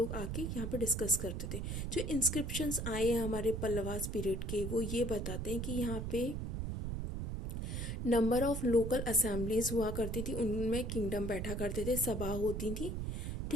आके यहाँ पे डिस्कस करते थे। जो इंस्क्रिप्शंस आए हैं हमारे पल्लवास पीरियड के, वो ये बताते हैं कि यहाँ पे नंबर ऑफ लोकल असेंबलीज हुआ करती थी, उनमें किंगडम बैठा करते थे, सभा होती थी,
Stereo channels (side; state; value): right; noise; rumble, 3 dB below the sound